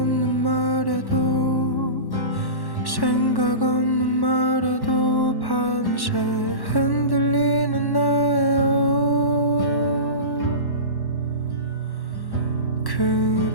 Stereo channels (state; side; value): late; right; 1.1 ms